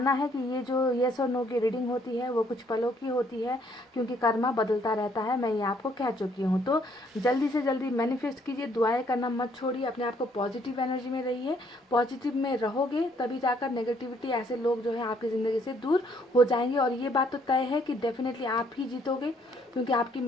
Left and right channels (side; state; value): both; normal; correlation 0.66